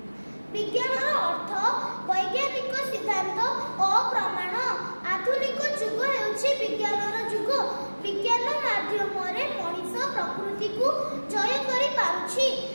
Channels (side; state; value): both; inverted; correlation -1.00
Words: ବିଜ୍ଞାନର ଅର୍ଥ ବୈଜ୍ଞାନିକ ସିଦ୍ଧାନ୍ତ ଓ ପ୍ରମାଣ। ଆଧୁନିକ ଯୁଗ ହେଉଛି ବିଜ୍ଞାନର ଯୁଗ। ବିଜ୍ଞାନ ମାଧ୍ୟମରେ ମଣିଷ ପ୍ରକୃତିକୁ ଜୟ କରିପାରୁଛି।